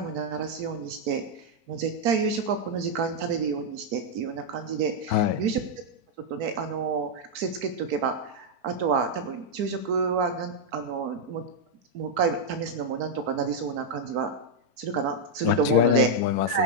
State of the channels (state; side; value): late; left; 4.5 ms